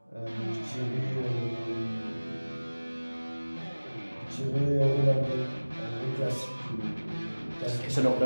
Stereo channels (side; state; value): both; inverted; correlation -1.00